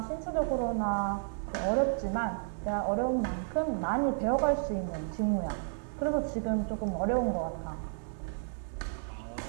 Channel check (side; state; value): left; silent; digital silence